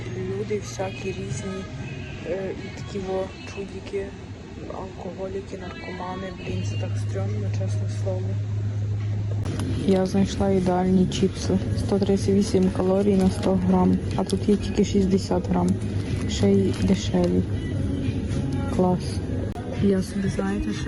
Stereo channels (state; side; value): identical; both; correlation 1.00